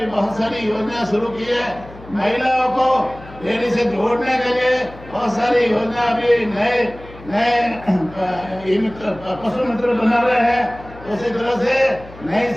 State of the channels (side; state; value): left; noise; hum, 19 dB below the sound